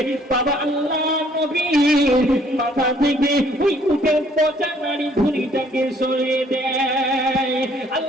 বাবা আল্লাহর নবীর মাথা থেকে ওই উটের পচা নারী ভুঁড়িটাকে সরিয়ে দেয়।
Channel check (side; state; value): both; normal; correlation 0.62